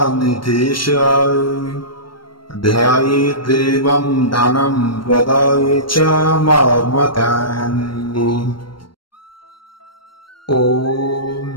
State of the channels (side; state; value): right; late; 0.73 ms